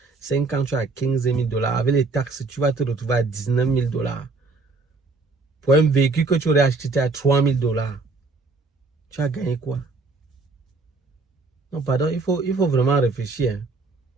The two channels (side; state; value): left; quieter; 3.8 dB